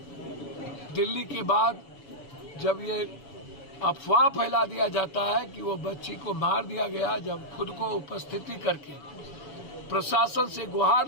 दिल्ली के बाद, जब ये अफवाह फैला दिया जाता है कि वो बच्ची को मार दिया गया, जब खुद को उपस्थिति करके प्रशासन से गुहार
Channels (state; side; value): late; right; 7.0 ms